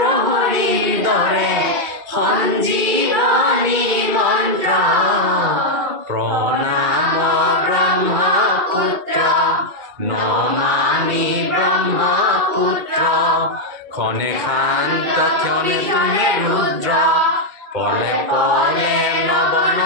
দৰে সঞ্জীৱনী মন্ত্ৰ প্ৰণাম ব্ৰহ্মপুত্ৰ নমামি ব্ৰহ্মপুত্ৰ ক্ষণে শান্ত ক্ষণে তুমি ৰুদ্ৰ পলে পলে নব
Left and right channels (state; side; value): late; left; 2.2 ms